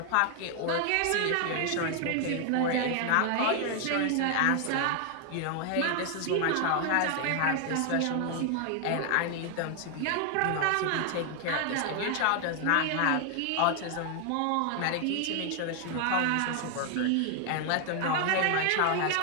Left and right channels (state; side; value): different; both; correlation 0.00